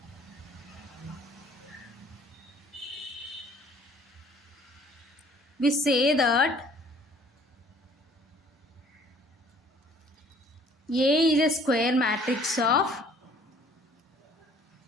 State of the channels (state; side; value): normal; both; correlation 0.56